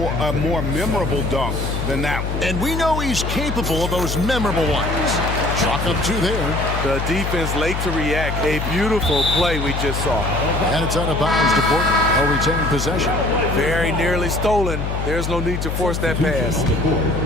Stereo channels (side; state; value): left; noise; hum, 2 dB below the sound